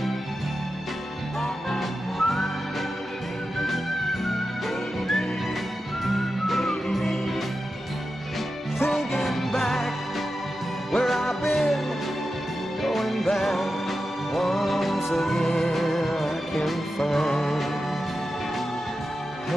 Thinking back where I've been, going back once again. I can find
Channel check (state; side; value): normal; both; correlation 0.91